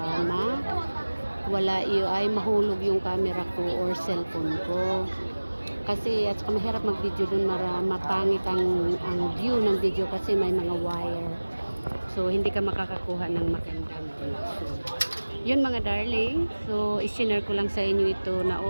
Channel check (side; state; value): both; inverted; correlation -1.00